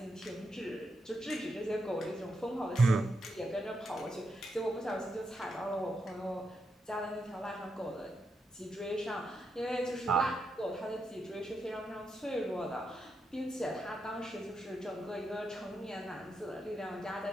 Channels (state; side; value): normal; both; correlation 0.84